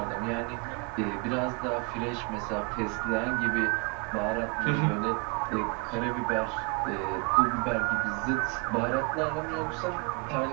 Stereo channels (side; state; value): left; quieter; 31.3 dB